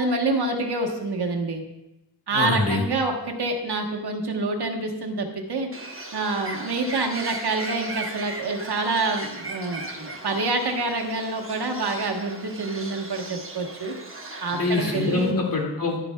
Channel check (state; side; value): normal; both; correlation 0.16